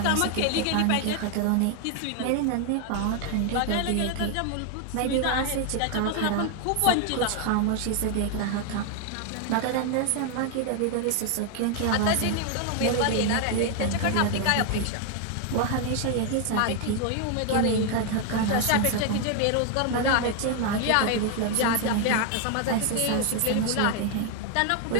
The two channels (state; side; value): different; both; correlation 0.01